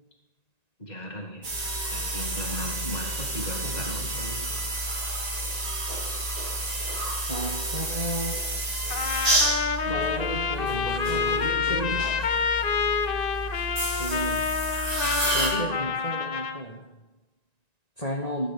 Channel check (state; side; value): late; right; 1.9 ms